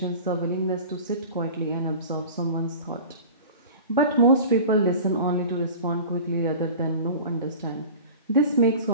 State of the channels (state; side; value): inverted; both; correlation -0.38